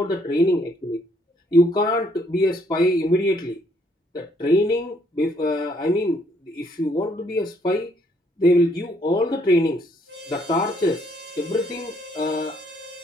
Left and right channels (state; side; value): normal; both; correlation 0.68